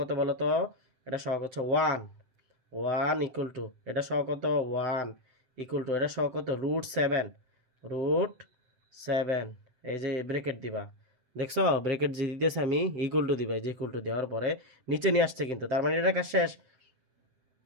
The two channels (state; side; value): late; left; 7.8 ms